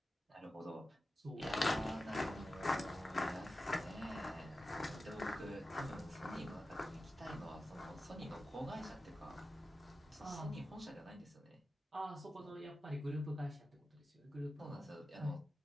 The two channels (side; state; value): both; normal; correlation 0.93